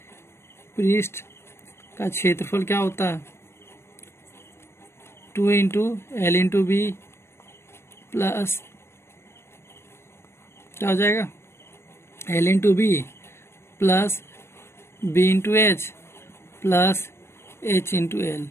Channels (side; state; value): right; late; 0.12 ms